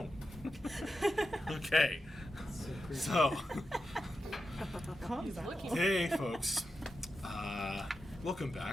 Okay, so, hey folks, welcome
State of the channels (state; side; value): normal; both; correlation 0.89